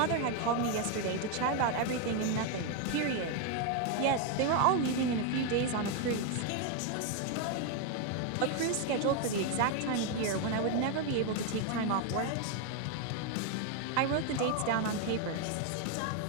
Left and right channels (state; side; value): different; both; correlation 0.01